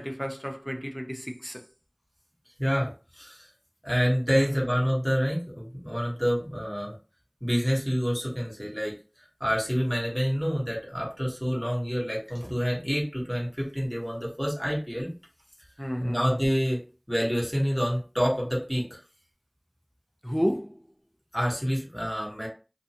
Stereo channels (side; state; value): both; identical; correlation 1.00